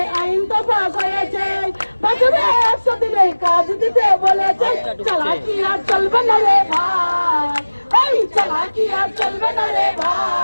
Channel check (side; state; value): both; inverted; correlation -1.00